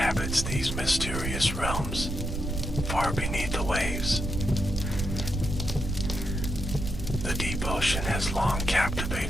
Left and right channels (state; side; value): noise; right; rumble, 3 dB below the sound